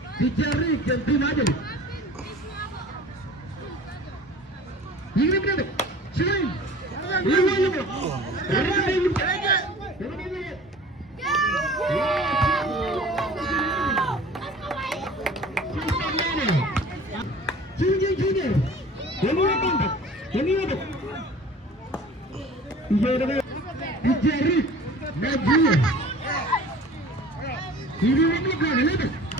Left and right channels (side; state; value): both; normal; correlation 0.44